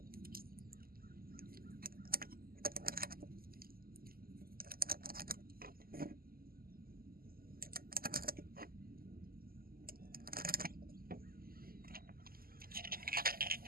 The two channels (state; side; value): late; left; 0.43 ms